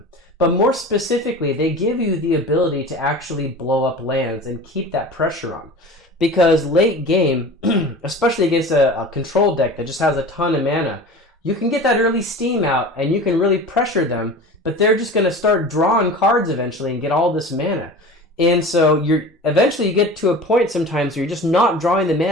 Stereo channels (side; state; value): both; normal; correlation 0.36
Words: But more specifically, they give you the ability to actually blow up lands and keep that pressure on. Because late game, especially against a control deck that just has a ton of mana, you can get that early steam out and you can really pressure them, but they're just going to start drawing cards eventually and get all this mana. And so eventually you get to a point sometimes where you're just not drawing the